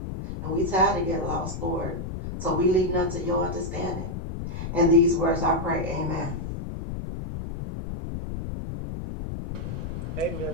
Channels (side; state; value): left; noise; rumble, 6 dB below the sound